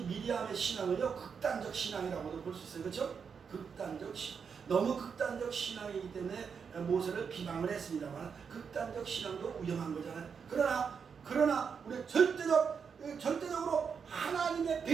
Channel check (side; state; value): left; quieter; 6.3 dB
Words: 미리암의 신앙은요, 극단적 신앙이라고도 볼 수 있어요. 그렇죠? 극단적 신앙. 너무 극단적 신앙이기 때문에 모세를 비방을 했습니다만, 극단적 신앙도 위험한 거잖아요. 그러나 우리 절대적으로 하나님의